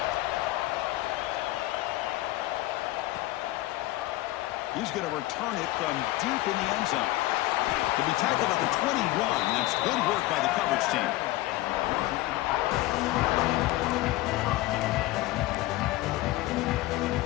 He's going to return it from deep in the end zone. To be tackled at the 21. That's good work by the coverage team.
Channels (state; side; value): quieter; right; 17.7 dB